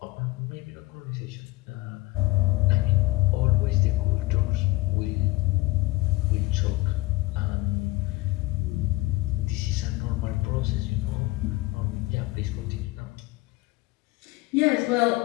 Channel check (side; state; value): right; quieter; 19.9 dB